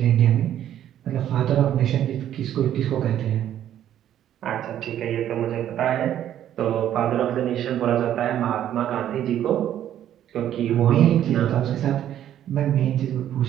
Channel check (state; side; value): quieter; left; 11.1 dB